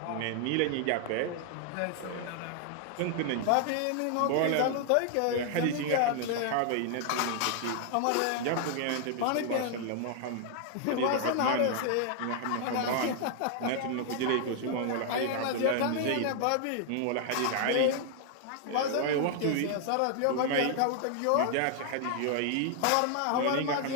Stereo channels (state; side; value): different; both; correlation 0.00